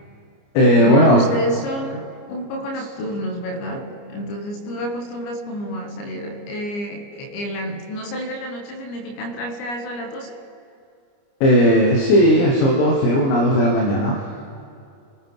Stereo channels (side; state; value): right; late; 29 ms